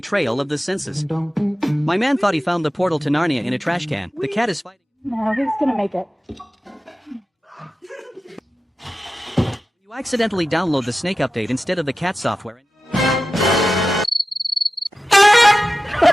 of the senses. My man thought he found the portal to Narnia in a trash can. The cat is fighting. No, he's gonna make it. You accidentally download the Snake update instead of the cat software.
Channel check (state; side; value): normal; both; correlation 0.94